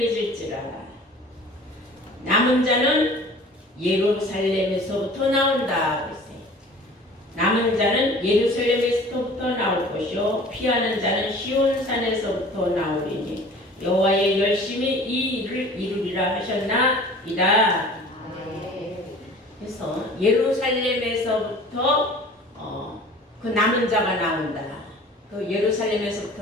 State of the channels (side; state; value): both; normal; correlation 0.45